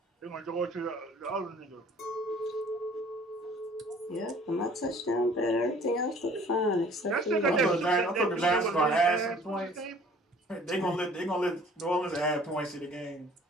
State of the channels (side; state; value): both; normal; correlation 0.53